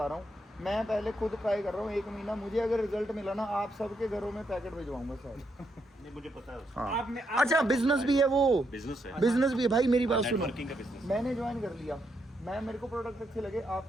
रहा हूँ मैं पहले खुद ट्राई कर रहा हूँ 1 महीना मुझे अगर रिजल्ट मिला ना आप सबके घरों में पैकेट भिजवाऊंगा शायद नहीं मुझे पता है उसका हाँ। अच्छा बिजनेस भी है वो बिजनेस है बिजनेस भी है भाई मेरी बात सुनो नेटवर्किंग का बिजनेस मैंने ज्वाइन कर लिया मेरे को प्रोडक्ट अच्छे लगे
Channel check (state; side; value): normal; both; correlation 0.79